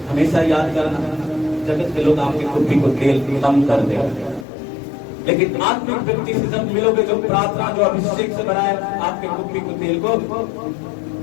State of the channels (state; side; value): drops out; right; at 4.5 s